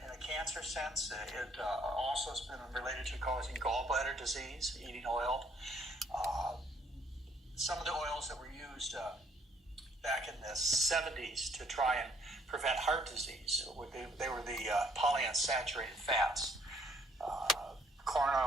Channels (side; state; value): both; normal; correlation 0.65